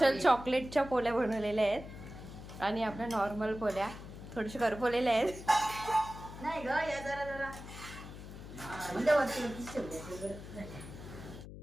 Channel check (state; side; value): noise; left; hum, 13 dB below the sound